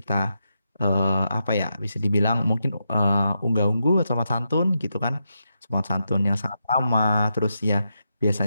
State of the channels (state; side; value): inverted; both; correlation -0.85